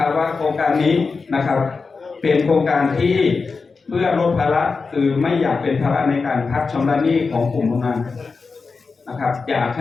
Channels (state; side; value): quieter; right; 4.5 dB